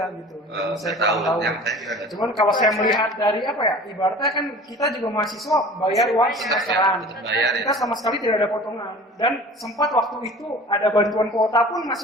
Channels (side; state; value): both; normal; correlation 0.42